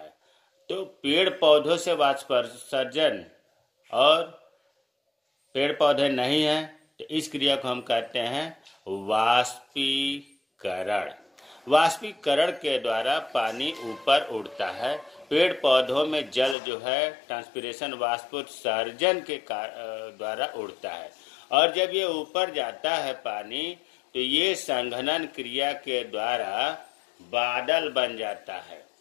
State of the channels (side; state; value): right; drops out; at 16.6 s